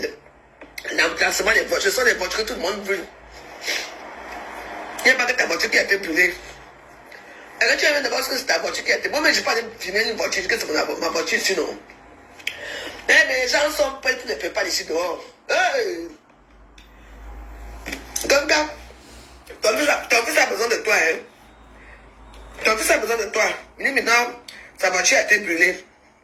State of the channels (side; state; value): both; identical; correlation 1.00